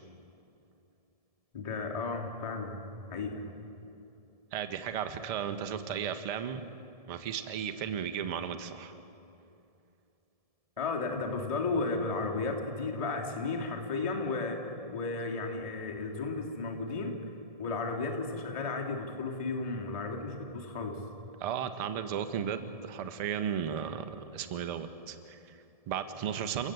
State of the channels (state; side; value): late; left; 1.7 ms